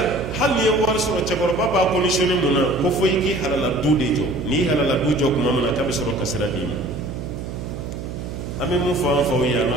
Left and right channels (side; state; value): right; noise; hum, 8 dB below the sound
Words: hali n'i ye wari sɔrɔ cɛkɔrɔba b'a conditionné mun na ko fo i k'i halala du de jɔ n'i halala du jɔ tuma min na k'a bɛ sɔrɔ ka sira d'i ma an bɛ mun fɔ an faw ye an